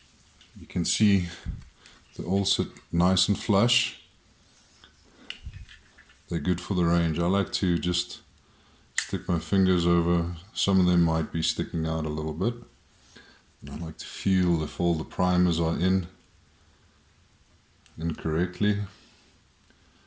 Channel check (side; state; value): both; identical; correlation 1.00